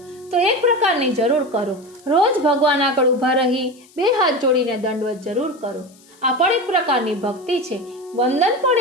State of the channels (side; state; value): left; noise; hiss, 28 dB below the sound